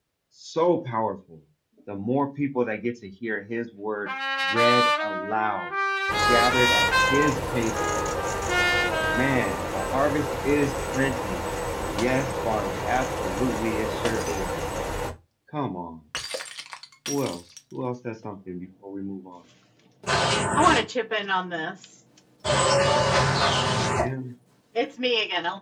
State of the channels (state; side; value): identical; both; correlation 1.00